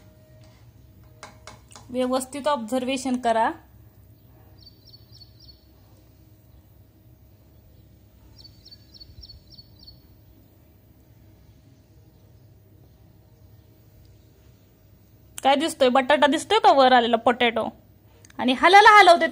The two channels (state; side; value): identical; both; correlation 1.00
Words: व्यवस्थित ऑब्झर्वेशन करा. काय दिसतोय, बटाटा दिसतोय का वर आलेला पोटॅटो, आणि हलवते,